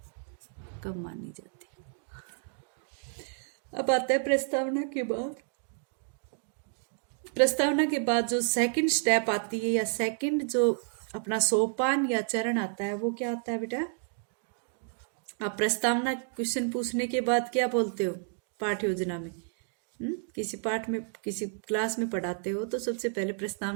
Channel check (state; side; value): silent; left; 57 dB below the other